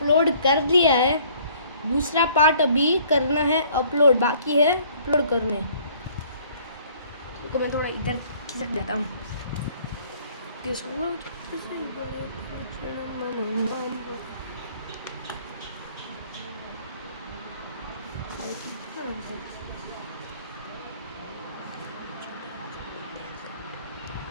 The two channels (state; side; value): inverted; both; correlation -0.57